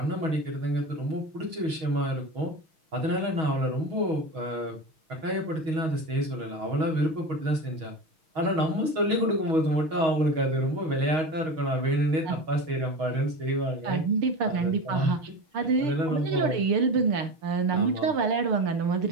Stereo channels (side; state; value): left; late; 6.3 ms